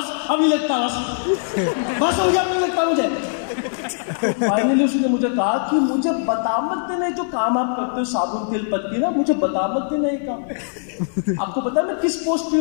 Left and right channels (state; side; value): silent; right; digital silence